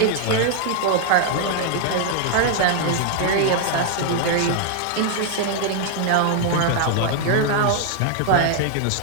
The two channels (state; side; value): different; both; correlation 0.00